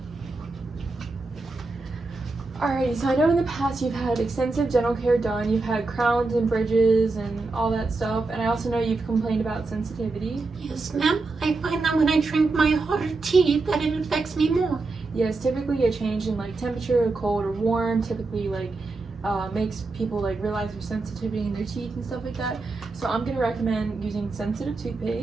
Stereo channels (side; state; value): left; quieter; 3.6 dB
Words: Alrighty, so I know in the past you've had extensive dental care done, you've had crowns and bridges and all that stuff, and I also know you've complained about sensitivity. Yes, ma'am. I find that when I drink my hotter tea, that it affects me more. Yes, typically a change in like temperature, cold or warm, typically makes people realize their sensitivity in their teeth and stuff like that. So I'm gonna recommend using sensitive